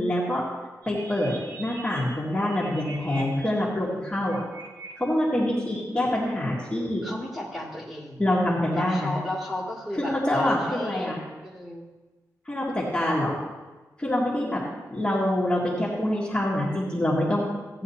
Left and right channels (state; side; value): normal; both; correlation 0.88